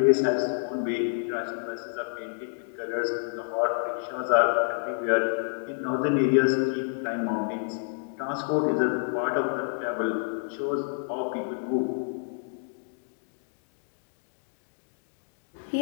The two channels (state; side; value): silent; right; digital silence